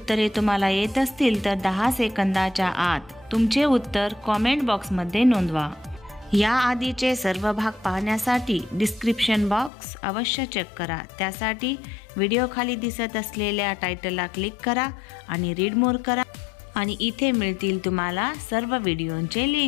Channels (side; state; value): right; drops out; at 9.7 s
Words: तुम्हाला येत असतील तर 10 सेकंदाच्या आत तुमचे उत्तर कमेंट बॉक्समध्ये नोंदवा। या आधीचे सर्व भाग पाहण्यासाठी डिस्क्रिप्शन बॉक्स अवश्य चेक करा। त्यासाठी व्हिडिओ खाली दिसत असलेल्या टायटलला क्लिक करा आणि रीड मोर करा आणि इथे मिळतील तुम्हाला सर्व व्हिडिओंचे